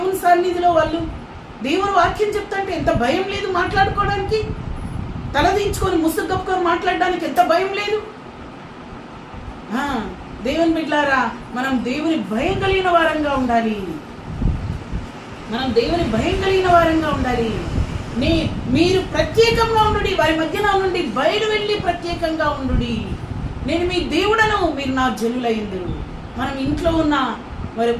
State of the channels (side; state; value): both; identical; correlation 1.00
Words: సన్నిధిలో వాళ్ళు. దేవుడు వాక్యం చెప్తాంటే ఎంత భయం లేదు మాట్లాడుకోవడానికి? తలదించుకొని ముసుగు కప్పుకొని మాట్లాడడానికి ఎంత భయం లేదు? దేవుని బిడ్డలారా, మనం దేవుని భయం కలిగిన వారంగా ఉండాలి. మీరు ప్రత్యేకంగా ఉండుడి, వారి మధ్యన నుండి బయలు వెళ్ళి ప్రత్యేకంగా ఉండుడి. నేను మీ దేవుడను, మీరు నా జనులైందురు. మనం ఇంట్లో ఉన్నా, మరి